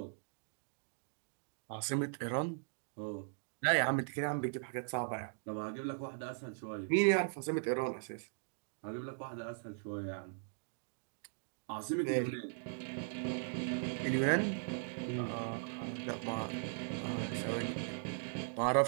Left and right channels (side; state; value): left; silent; digital silence